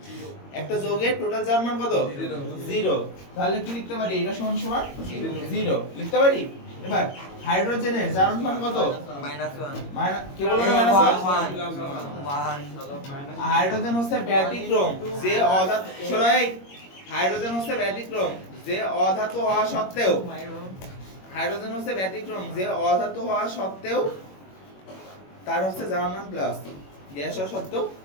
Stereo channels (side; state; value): right; late; 21 ms